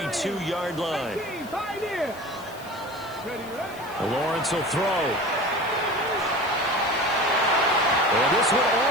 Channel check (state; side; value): noise; left; hiss, 21 dB below the sound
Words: line. Lawrence will throw. And this one